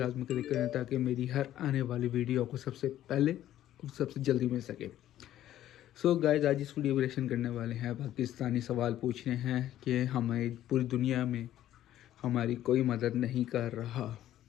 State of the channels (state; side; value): quieter; right; 12.6 dB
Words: क्लिक करें ताकि मेरी हर आने वाली वीडियो आपको सबसे पहले और सबसे जल्दी मिल सके। सो गाइस आज इस वीडियो को रिएक्शन करने वाले हैं, पाकिस्तानी सवाल पूछ रहे हैं कि हमें पूरी दुनिया में हमारी कोई मदद नहीं कर रहा,